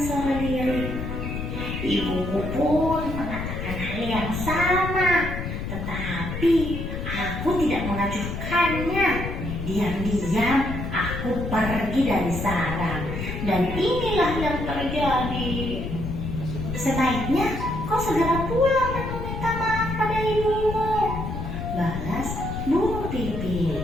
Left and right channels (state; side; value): noise; left; rumble, 5 dB below the sound